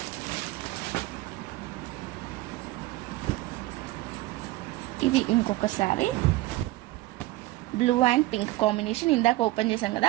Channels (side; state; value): left; quieter; 18.2 dB